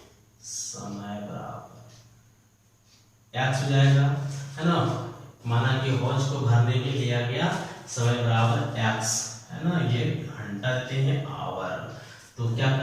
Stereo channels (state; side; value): identical; both; correlation 1.00